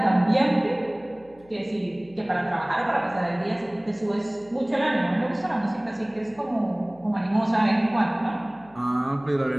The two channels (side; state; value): left; noise; hum, 27 dB below the sound